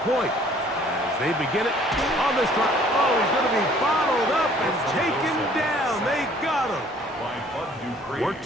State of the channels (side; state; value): both; normal; correlation 0.57